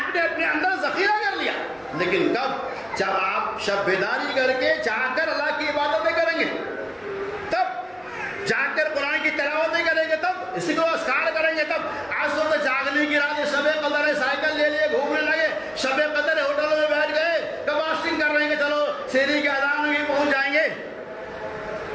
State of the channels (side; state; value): both; identical; correlation 1.00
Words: نے اپنے اندر ذخیرہ کر لیا، لیکن کب؟ جب آپ شب بیداری کر کے جا کر اللہ کی عبادتیں کریں گے، تب جا کر قرآن کی تلاوتیں کریں گے، تب اسی کو اذکار کریں گے، تب آج تو جاگنے کی رات شب قدر ہے، سائیکل لے لیے گھومنے لگے، شب قدر ہے ہوٹلوں میں بیٹھ گئے، کب فاسٹنگ کر رہے ہیں کہ چلو شیری کے اذان میں پہنچ جائیں گے،